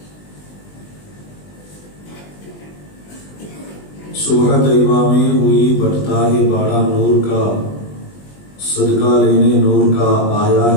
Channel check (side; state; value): right; late; 20 ms